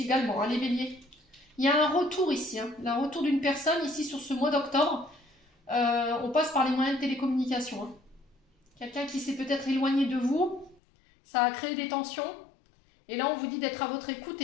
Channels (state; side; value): drops out; right; at 10.8 s